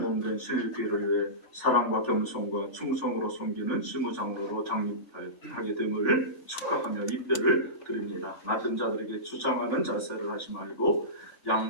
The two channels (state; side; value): late; right; 3.5 ms